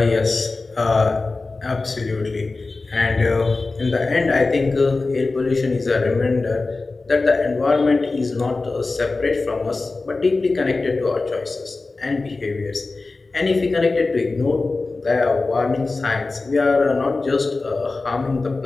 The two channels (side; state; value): right; quieter; 3.6 dB